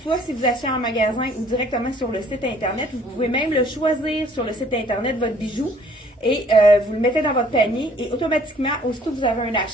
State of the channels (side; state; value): both; normal; correlation 0.58